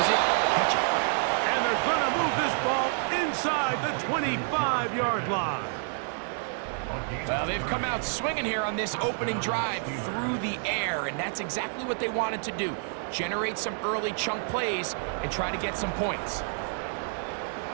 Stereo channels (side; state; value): left; silent; 59 dB below the other